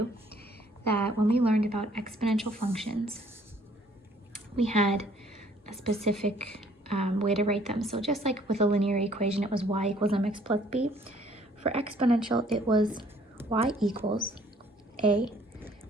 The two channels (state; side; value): normal; both; correlation 0.60